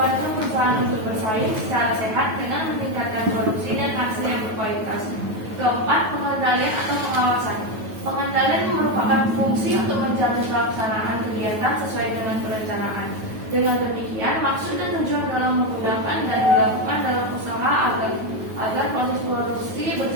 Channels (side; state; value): left; late; 9.2 ms